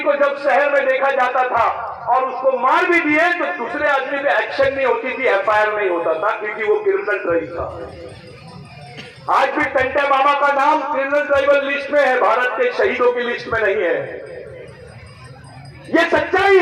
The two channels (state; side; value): identical; both; correlation 1.00